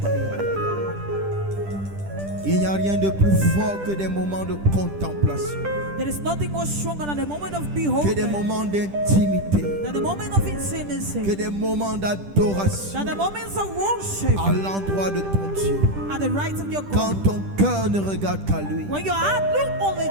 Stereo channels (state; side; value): late; left; 10 ms